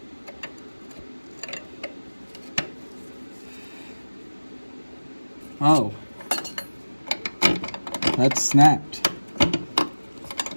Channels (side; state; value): both; inverted; correlation -1.00